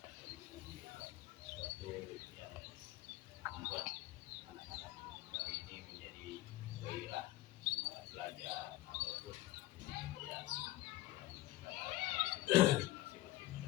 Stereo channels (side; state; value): right; quieter; 17.0 dB